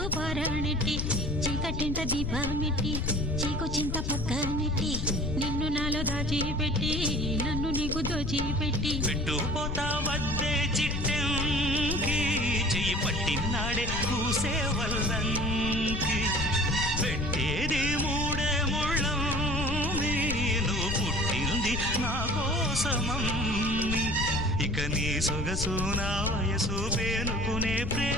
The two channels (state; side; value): noise; left; rumble, 3 dB below the sound